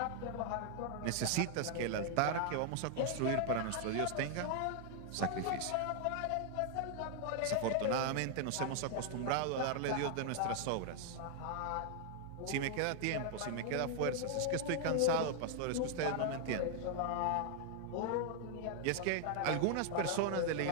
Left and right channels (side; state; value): both; different; correlation 0.00